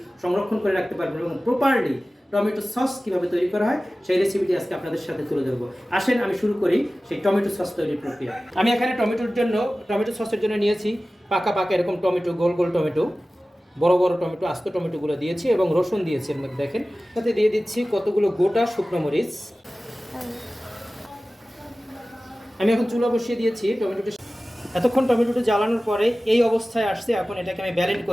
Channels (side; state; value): both; normal; correlation 0.96